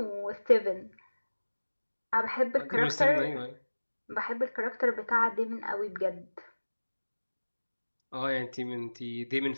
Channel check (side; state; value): both; inverted; correlation -1.00